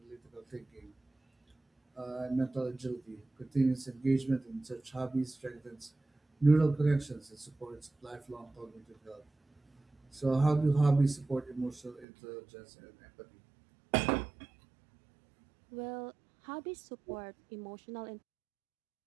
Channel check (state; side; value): drops out; left; at 12.1 s